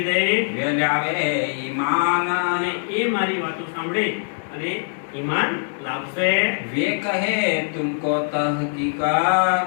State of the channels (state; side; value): silent; right; 64 dB below the other